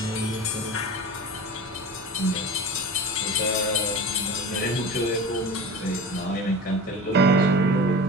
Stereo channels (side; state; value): both; normal; correlation 0.33